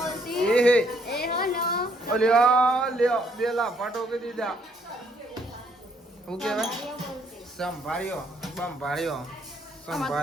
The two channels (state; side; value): normal; both; correlation 0.69